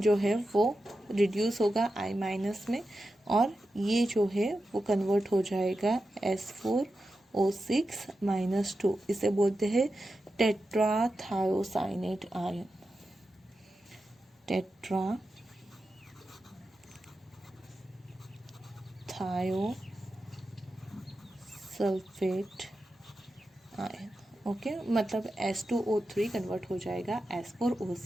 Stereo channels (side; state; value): both; normal; correlation 0.91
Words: है वो रिड्यूस होगा I- में, और ये जो है वो कन्वर्ट हो जाएगा S4O6-2. इसे बोलते हैं टेट्राथायोसाइनेट आयन, टेट्राथायोसल्फेट आयन. ओके, मतलब S2O3 कन्वर्ट हो जाएगा